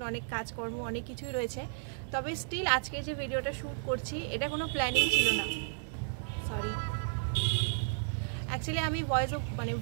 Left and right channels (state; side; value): silent; left; digital silence